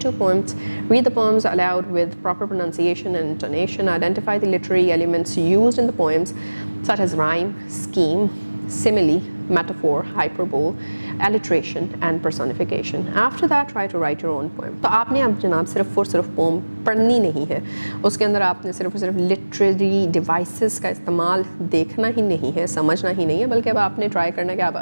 poems. Read the poems aloud with proper pronunciation and intonation. Identify the literary elements used in the poems such as rhyme, scheme, simile, metaphor, hyperbole, alliteration and personification. After that, try to write your own poem. तो आपने अब जनाब सिर्फ और सिर्फ pome पढ़नी नहीं है, उसके अंदर आपने सिर्फ और सिर्फ लिटरेरी डिवाइसेस का इस्तेमाल देखना ही नहीं है, समझना ही नहीं है, बल्कि अब आपने ट्राई करना है कि आप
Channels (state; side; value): inverted; both; correlation -1.00